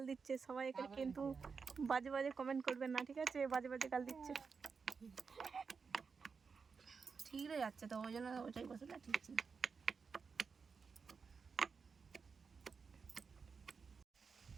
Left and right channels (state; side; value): quieter; left; 5.4 dB